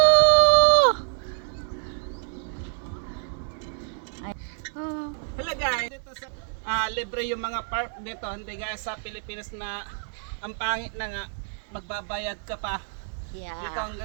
Hello guys, dito sa libre yung mga park dito, hindi gaya sa Pilipinas na ang pangit na nga magbabayad ka pa. Yeah. Dito ang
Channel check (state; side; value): silent; left; 58 dB below the other